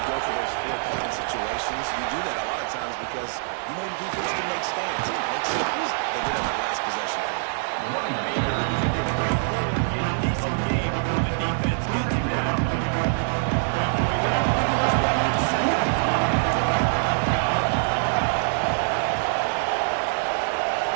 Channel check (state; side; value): silent; left; digital silence